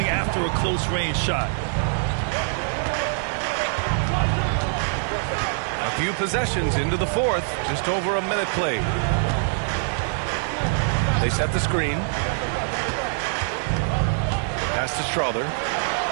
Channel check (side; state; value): left; silent; 63 dB below the other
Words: after a close-range shot. A few possessions into the fourth, just over a minute played. They set the screen. Pass to Strother.